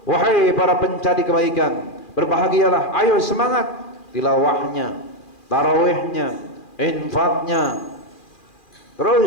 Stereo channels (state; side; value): late; right; 2.4 ms